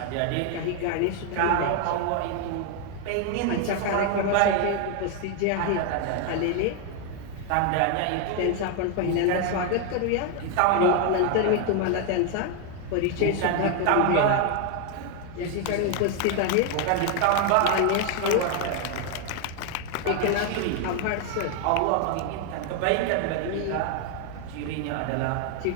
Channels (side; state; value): both; different; correlation 0.01